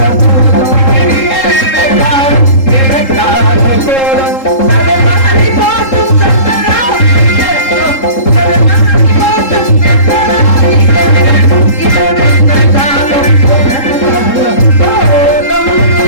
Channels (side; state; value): right; late; 3.7 ms